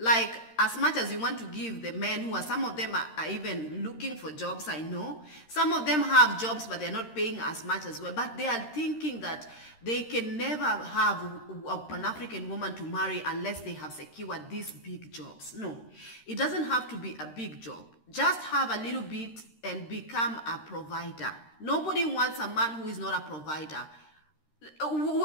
as much as you want to give the men who are, some of them are even looking for jobs, I know. Some of them have jobs, but they're not paying as much as well. But they are thinking that they can never have an African woman to marry unless they have secured these big jobs. No, it doesn't have to be a big job. Just have a little bit and become a provider. Nobody wants a man who is not a provider.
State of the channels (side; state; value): right; late; 13 ms